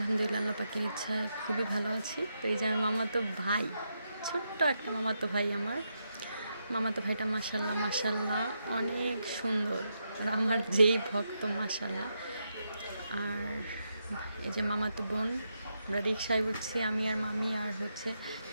আল্লাহ পাকের ইচ্ছায় খুবই ভালো আছি। তো এই যে আমার মামাতো ভাই, ছোট্ট একটা মামাতো ভাই আমার। মামাতো ভাইটা মাশাআল্লাহ মাশাআল্লাহ অনেক সুন্দর। আর আমার যেই ভক্ত মাশাআল্লাহ। আর এই যে মামাতো বোন, আমরা রিকশায় উঠছি আমি আর মামি আর হচ্ছে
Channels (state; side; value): inverted; both; correlation -0.83